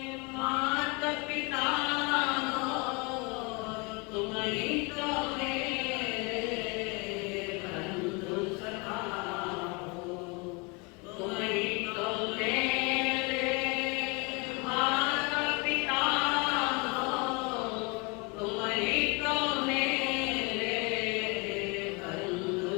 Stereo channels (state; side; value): quieter; right; 28.9 dB